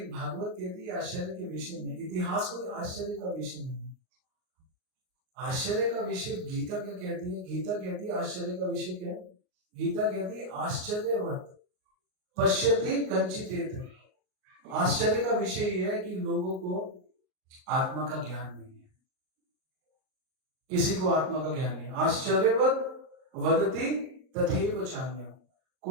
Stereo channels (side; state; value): left; late; 38 ms